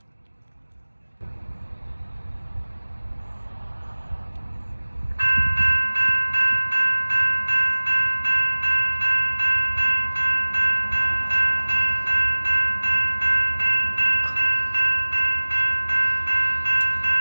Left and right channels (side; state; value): both; inverted; correlation -1.00